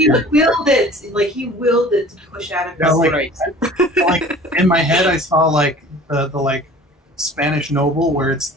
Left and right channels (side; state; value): both; normal; correlation 0.45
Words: it. Like, he willed it to push out of Yeah, his like, like in my head, I saw like the like Spanish noble where it's